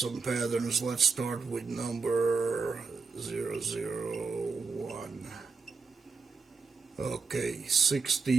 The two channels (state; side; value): quieter; left; 4.7 dB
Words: patterns. Let's start with number 001. Okay,